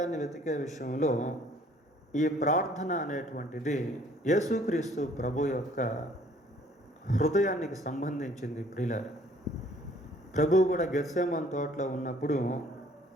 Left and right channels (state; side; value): normal; both; correlation 0.58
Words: వెతికే విషయంలో ఈ ప్రార్థన అనేటువంటిది యేసుక్రీస్తు ప్రభు యొక్క హృదయానికి సంబంధించింది. ప్రియులారా, ప్రభువు కూడా గెత్సేమను తోటలో ఉన్నప్పుడు